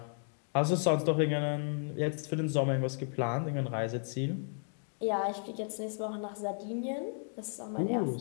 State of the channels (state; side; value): silent; right; 55 dB below the other